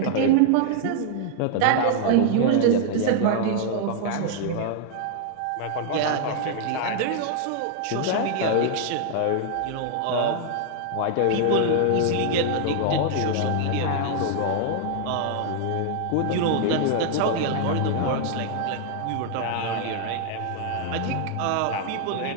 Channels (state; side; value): different; both; correlation 0.00